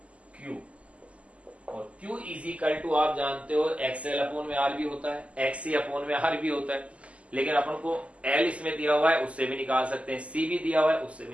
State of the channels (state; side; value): late; left; 0.063 ms